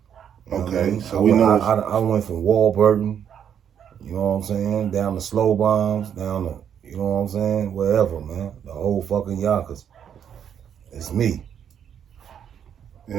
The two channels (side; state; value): left; quieter; 8.7 dB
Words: Okay, so I went from Warburton, you know what I'm saying, down to Slow Bombs, down to, you know what I'm saying, wherever, man. The whole fucking Yonkers. It's me. You